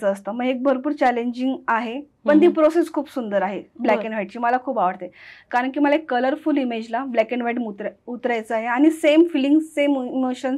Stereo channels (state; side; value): identical; both; correlation 1.00